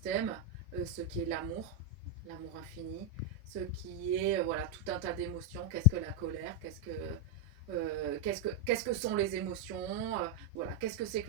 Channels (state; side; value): normal; both; correlation 0.00